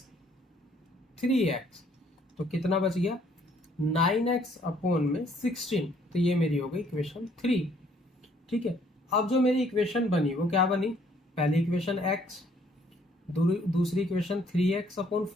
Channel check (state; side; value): normal; both; correlation 0.63